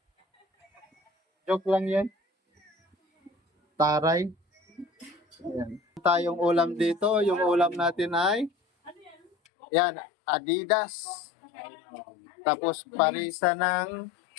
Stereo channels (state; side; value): drops out; right; at 9.3 s